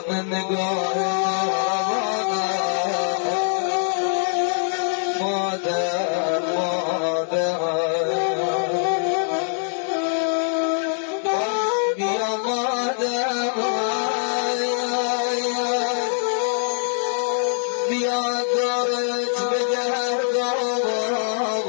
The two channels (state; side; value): silent; right; digital silence